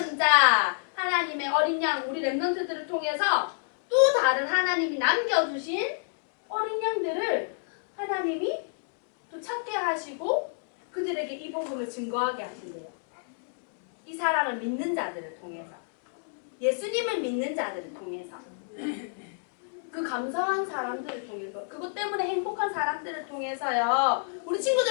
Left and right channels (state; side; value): silent; right; digital silence